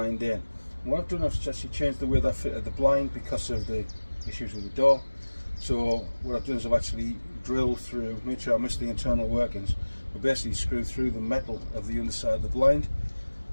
in. And what I've done is actually changed the way that fitted the blind because of the issues with the door. So what I've done is I've actually drilled through, made sure I missed the internal workings, but basically screwed through the metal of the underside of the blind,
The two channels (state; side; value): inverted; both; correlation -1.00